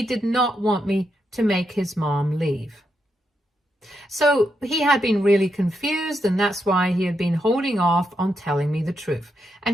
did not want me to make his mom leave. So he had been really confused, and that's why he had been holding off on telling me the truth,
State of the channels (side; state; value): both; normal; correlation 0.82